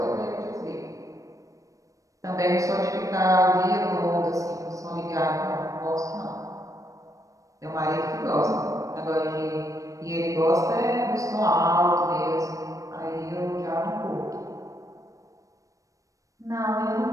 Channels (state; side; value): late; left; 0.16 ms